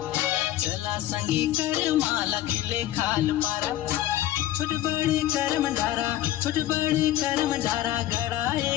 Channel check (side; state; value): right; quieter; 13.9 dB